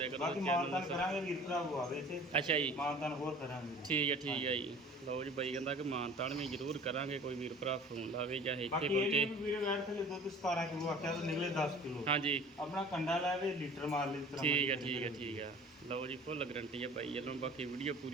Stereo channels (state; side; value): normal; both; correlation 0.45